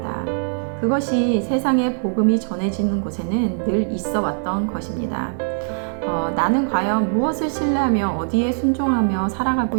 그것이 세상에 복음이 전해지는 곳에는 늘 있어 왔던 것입니다. 나는 과연 무엇을 신뢰하며 어디에 순종하며 살아가고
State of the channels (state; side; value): silent; left; 64 dB below the other